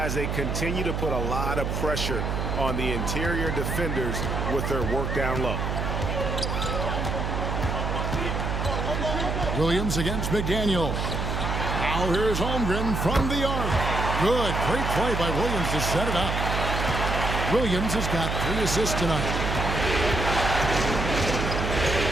they continue to put a lot of pressure on the interior defenders with their work down low. Williams against McDaniel. Now here's Holmgren from the arc. Good. Great play by Williams to set it up. Williams has got 3 assists tonight.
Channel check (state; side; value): noise; right; hum, 1 dB below the sound